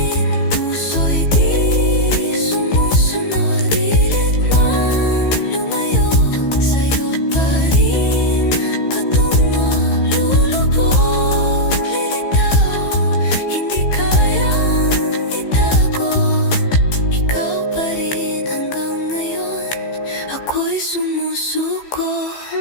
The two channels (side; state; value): right; late; 15 ms